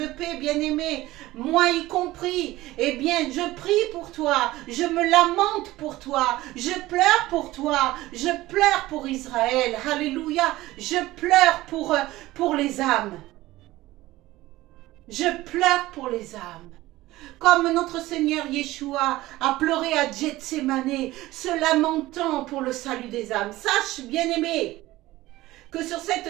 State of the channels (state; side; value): quieter; left; 17.5 dB